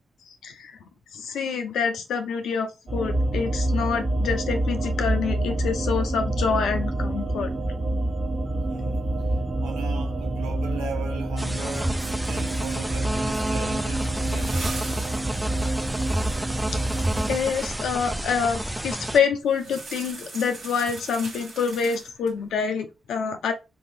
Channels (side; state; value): both; normal; correlation 0.80